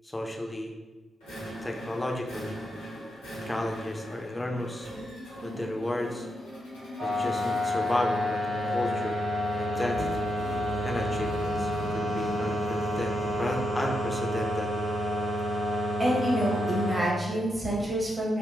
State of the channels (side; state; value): both; normal; correlation 0.83